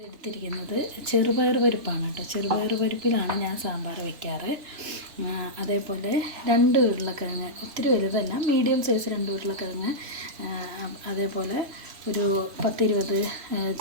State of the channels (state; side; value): late; left; 2.9 ms